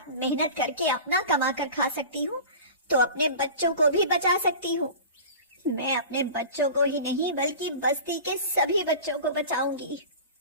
मेहनत करके अपना कमा कर खा सकती हूँ, तो अपने बच्चों को भी बचा सकती हूँ। मैं अपने बच्चों को ही नहीं बल्कि बस्ती के सभी बच्चों को बचाऊंगी।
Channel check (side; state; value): both; inverted; correlation -0.35